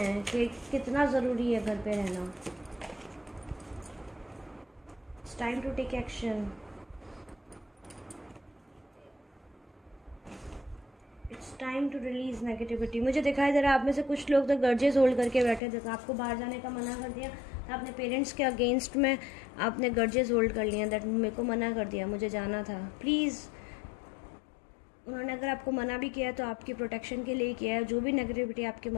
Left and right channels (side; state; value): right; drops out; at 15.6 s